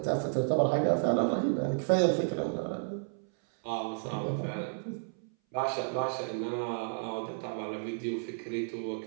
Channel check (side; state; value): left; silent; 56 dB below the other